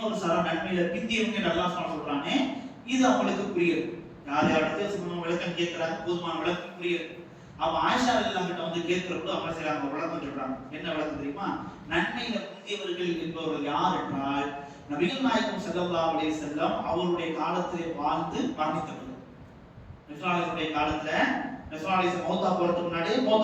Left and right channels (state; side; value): identical; both; correlation 1.00